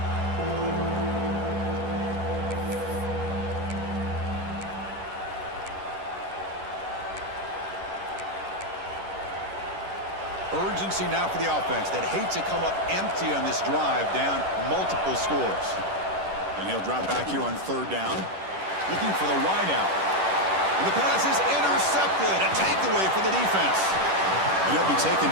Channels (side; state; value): left; late; 10 ms